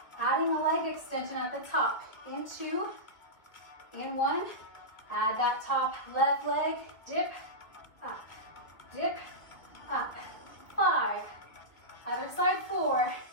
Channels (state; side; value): late; right; 2.1 ms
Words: adding a leg extension at the top. In 2, in 1, add that top left leg, dip, up, dip, up. 5, other side 4,